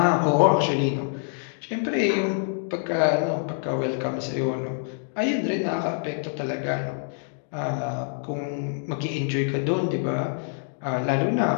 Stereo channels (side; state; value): right; silent; 59 dB below the other